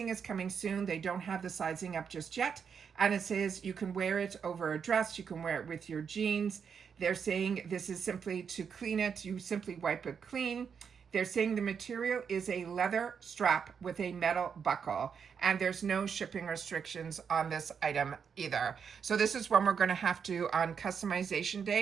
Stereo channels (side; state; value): left; quieter; 6.7 dB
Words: is coming soon. They don't have the sizing up just yet. And it says you can wear it over a dress. You can wear it with your jeans. They're saying this is simply to clean it. You simply wipe it clean. They're saying the material is a leather strap with a metal buckle, and there's no shipping restrictions on this item either. So this is one we're going to have to, on customization